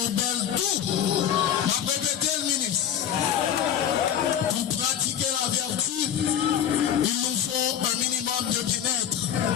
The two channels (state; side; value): quieter; right; 9.7 dB